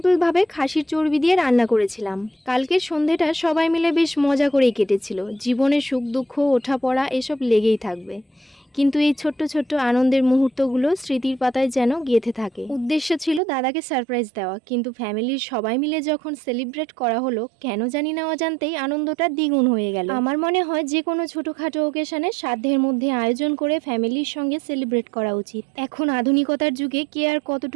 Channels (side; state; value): left; drops out; at 13.4 s